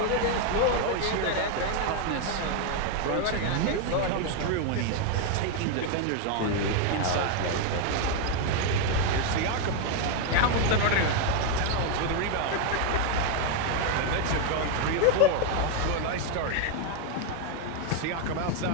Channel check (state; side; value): different; both; correlation 0.01